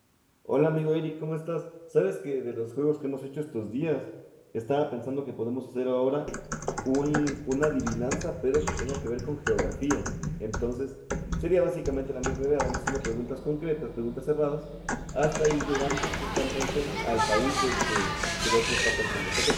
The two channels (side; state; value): both; identical; correlation 1.00